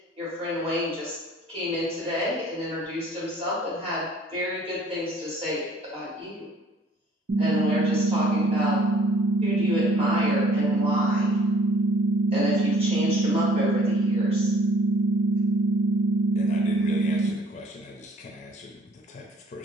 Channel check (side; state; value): both; normal; correlation 0.57